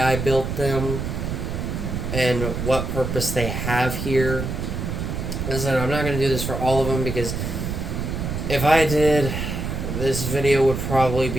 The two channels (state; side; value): noise; right; rumble, 3 dB below the sound